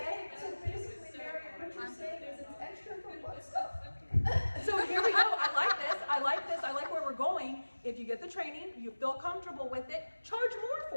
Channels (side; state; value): both; inverted; correlation -1.00